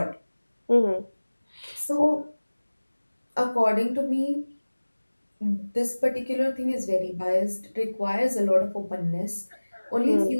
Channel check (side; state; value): both; inverted; correlation -1.00